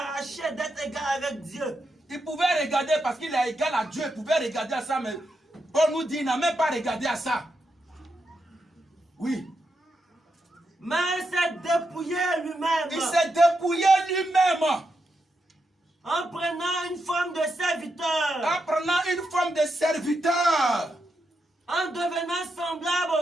d'être égal avec Dieu. Il pouvait regarder parce qu'il est égal à Dieu. Il pouvait regarder à ça, mais Paul nous dit, il n'a même pas regardé à ça. Oui. Mais il s'est dépouillé lui-même. Il s'est dépouillé lui-même. En prenant une forme de serviteur. En prenant une forme de serviteur. En devenant semblable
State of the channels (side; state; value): both; normal; correlation 0.84